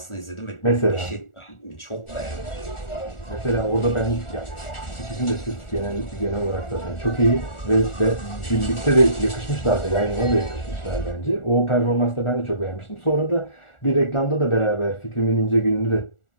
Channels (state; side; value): late; right; 1.4 ms